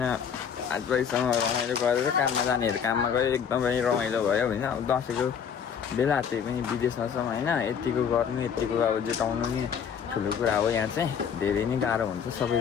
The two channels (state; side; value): quieter; right; 7.5 dB